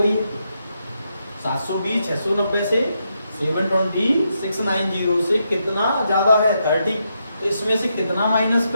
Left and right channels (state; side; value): inverted; both; correlation -0.82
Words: 720 690 से 720 690 से कितना ज्यादा है, 30। तो इसमें से कितना माइनस